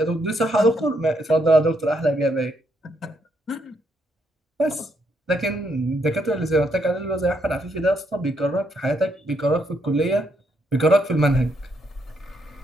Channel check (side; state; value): both; normal; correlation 0.76